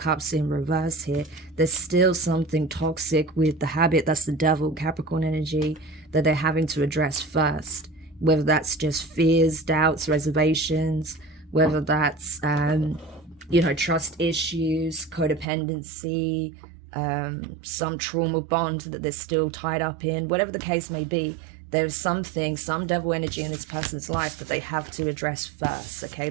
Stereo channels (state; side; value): drops out; left; at 15.5 s